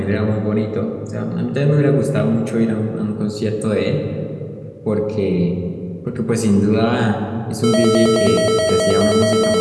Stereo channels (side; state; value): both; identical; correlation 1.00